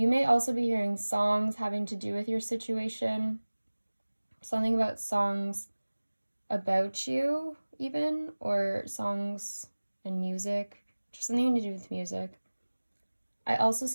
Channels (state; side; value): inverted; both; correlation -1.00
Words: may also be hearing songs having to do with your situation. Something about songs about you, even, or songs and music. Just something to do with music. I also